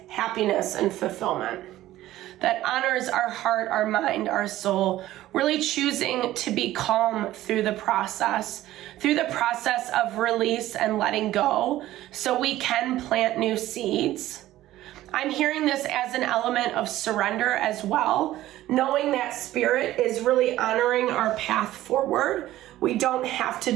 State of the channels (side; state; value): left; quieter; 14.9 dB